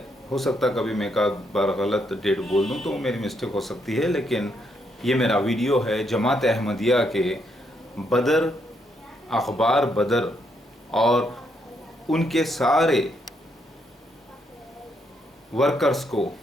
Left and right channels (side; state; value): both; normal; correlation 0.76